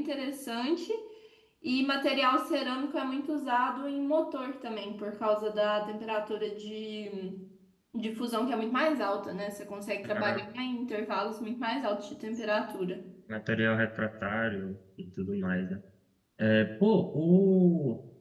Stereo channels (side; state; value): both; identical; correlation 1.00